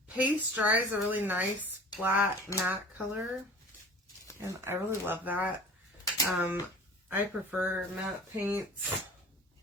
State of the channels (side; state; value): both; normal; correlation 0.43